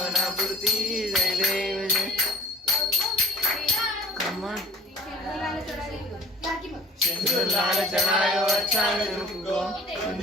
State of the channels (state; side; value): normal; both; correlation 0.47